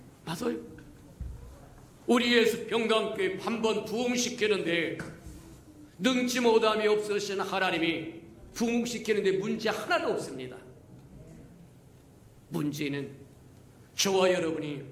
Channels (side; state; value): both; identical; correlation 1.00